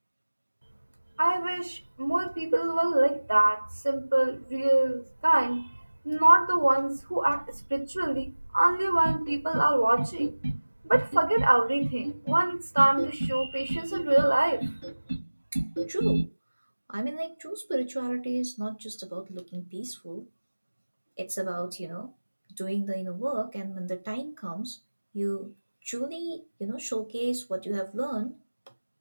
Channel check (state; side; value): inverted; both; correlation -1.00